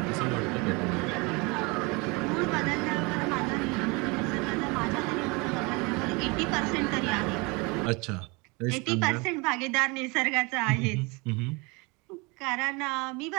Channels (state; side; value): quieter; left; 27.7 dB